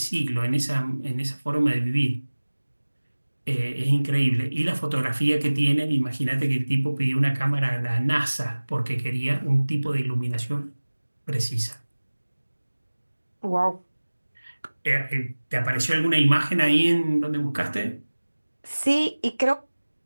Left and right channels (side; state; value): both; inverted; correlation -1.00